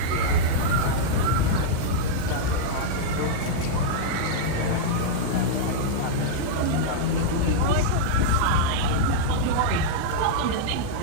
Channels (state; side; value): different; both; correlation -0.02